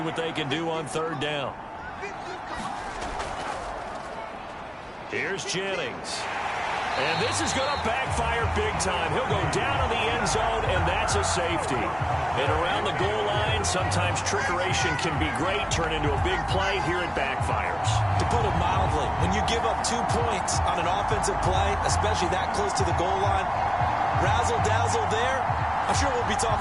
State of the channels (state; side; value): identical; both; correlation 1.00